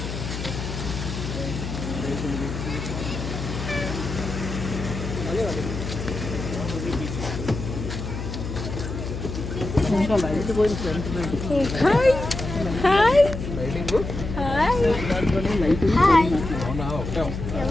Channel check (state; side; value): noise; left; hum, 6 dB below the sound